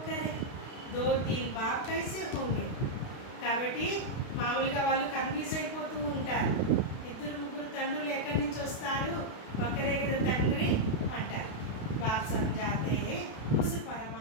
2-3 బాప్ కైసే హోంగే. కాబట్టి మామూలుగా వాళ్ళు కన్ఫ్యూజ్ అయిపోతూ ఉంటారు. 2-3 తండ్రులు ఎక్కడి నుంచి వస్తారు ఒకరే కదా తండ్రి అంటారు. బాప్ సమझाते हैं उस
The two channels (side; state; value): right; late; 32 ms